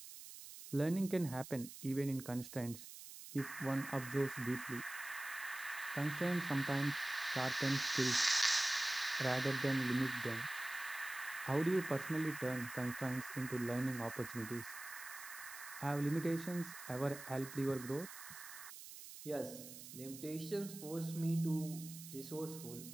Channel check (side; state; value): right; noise; hiss, 13 dB below the sound